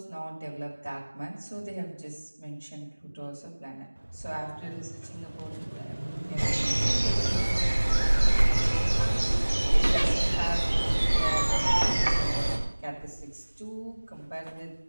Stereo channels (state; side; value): inverted; both; correlation -1.00